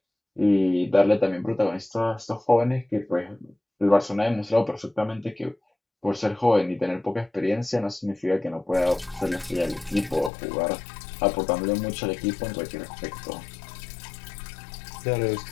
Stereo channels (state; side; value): drops out; right; at 10.3 s